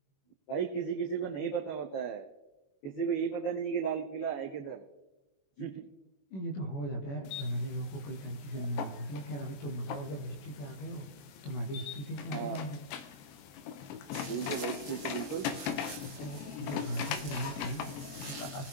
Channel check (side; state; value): right; late; 21 ms